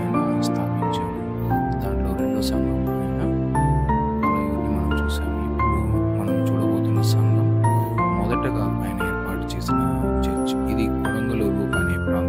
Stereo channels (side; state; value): both; identical; correlation 1.00